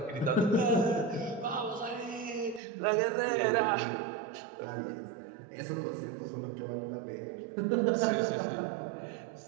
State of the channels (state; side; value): drops out; left; at 2.6 s